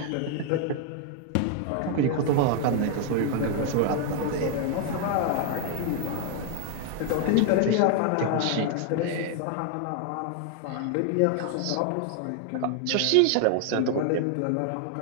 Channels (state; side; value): different; both; correlation 0.00